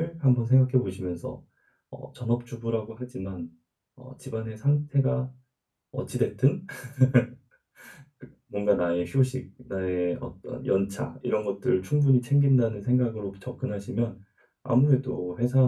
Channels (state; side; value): identical; both; correlation 1.00